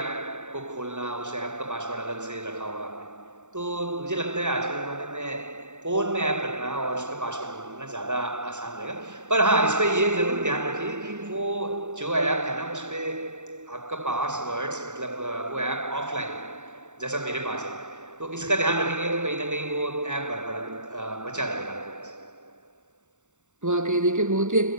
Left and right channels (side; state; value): left; late; 0.84 ms